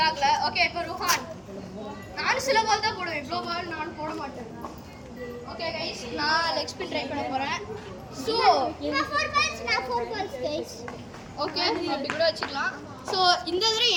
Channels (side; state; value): both; identical; correlation 1.00